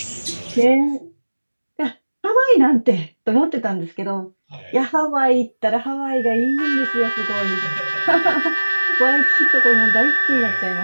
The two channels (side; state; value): both; inverted; correlation -1.00